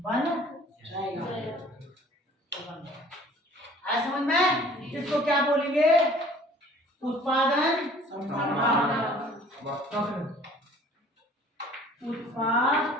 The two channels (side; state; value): both; normal; correlation 0.52